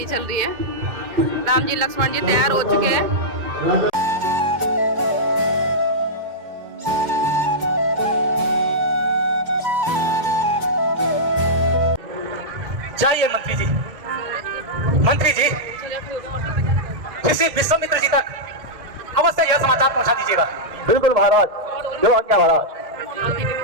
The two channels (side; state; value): left; late; 2.1 ms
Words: चल रही है। राम जी लक्ष्मण जी तैयार हो चुके हैं। जाइए मंत्री जी, मंत्री जी किसी विश्वामित्र जी तक अवश्य यह समाचार पहुंचा दीजिएगा। बिल्कुल महाराज, जो आज्ञा महाराज।